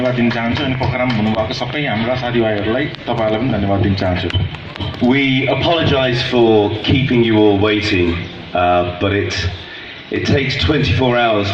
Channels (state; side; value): identical; both; correlation 1.00